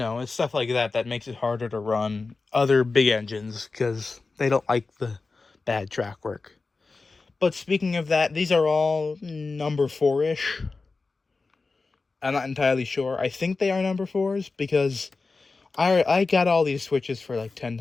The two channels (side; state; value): right; quieter; 4.0 dB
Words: stuff like that makes it harder to run other big engines, because they don't like the bad track work. But speaking of that, these are all number 4-ish. I'm not entirely sure. I think they are number 4s, because I got all these switches for like